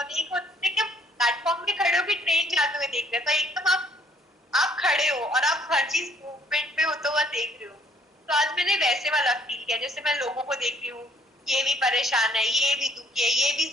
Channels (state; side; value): normal; both; correlation 0.63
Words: और एक होता है कि हम प्लेटफॉर्म पे खड़े होकर ट्रेन जाते हुए देख रहे हैं। तो एकदम आप खड़े हो और आप हर चीज मूवमेंट में होता हुआ देख रहे हो। तो आज मैंने वैसे वाला फील किया, जैसे मैं लोगों को देख रही हूँ, ये भी परेशान है, ये भी दुखी है, ये भी